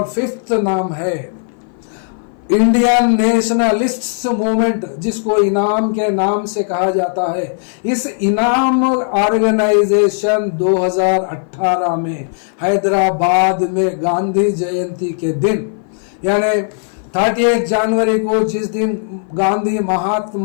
फिफ्थ नाम है इंडियन नेशनलिस्ट्स मूवमेंट, जिसको इनाम के नाम से कहा जाता है। इस इनाम ऑर्गेनाइजेशन 2018 में हैदराबाद में गांधी जयंती के दिन, यानी 30 जनवरी को जिस दिन गांधी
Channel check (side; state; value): right; silent; 58 dB below the other